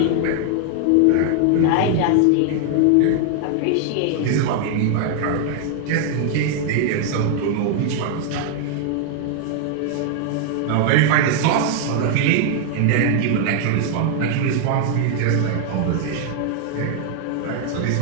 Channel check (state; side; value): different; both; correlation 0.00